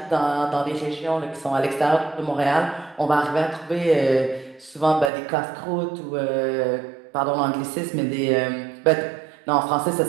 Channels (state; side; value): drops out; left; at 5.1 s